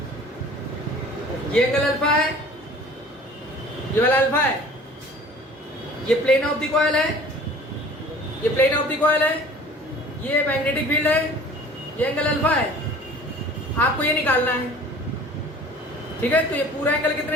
ये एंगल अल्फा है, ये वाला अल्फा है, ये प्लेन ऑफ द कॉइल है, ये प्लेन ऑफ द कॉइल है, ये मैग्नेटिक फील्ड है, ये एंगल अल्फा है। आपको ये निकालना है, ठीक है। तो ये पूरा एंगल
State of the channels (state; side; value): normal; both; correlation 0.47